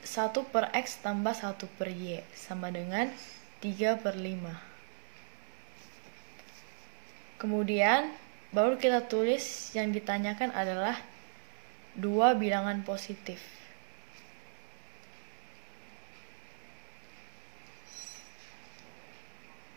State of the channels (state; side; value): silent; left; 53 dB below the other